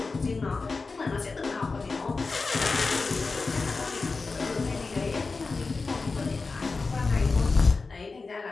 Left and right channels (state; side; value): quieter; right; 4.1 dB